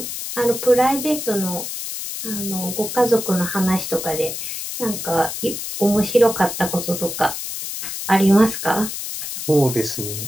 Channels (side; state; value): left; noise; hiss, 6 dB below the sound